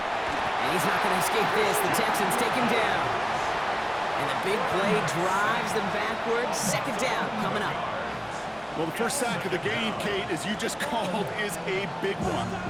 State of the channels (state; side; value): identical; both; correlation 1.00